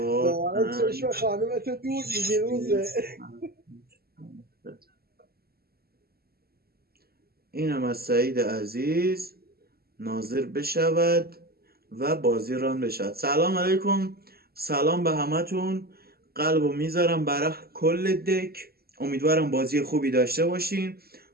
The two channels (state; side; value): late; left; 0.45 ms